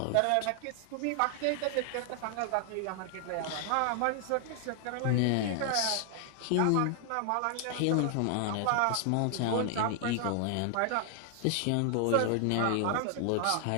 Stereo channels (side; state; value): both; different; correlation 0.00